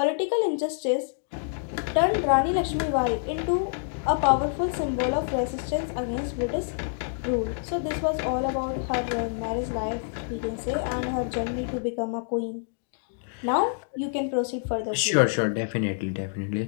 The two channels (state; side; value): silent; right; digital silence